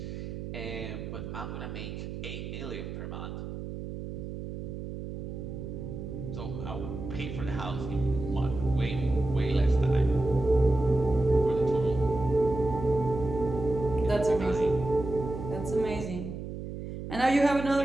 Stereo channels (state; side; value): noise; right; hum, 8 dB below the sound